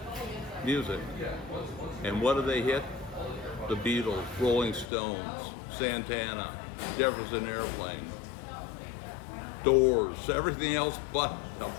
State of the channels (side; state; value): right; drops out; at 4.9 s